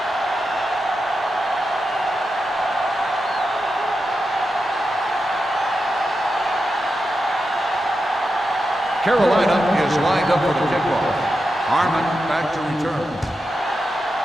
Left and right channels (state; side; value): normal; both; correlation 0.89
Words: Carolina is lined up for the kickoff. Harmon back to return.